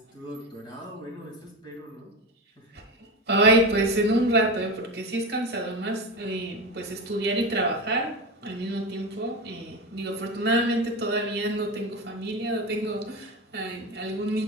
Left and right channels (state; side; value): normal; both; correlation 0.20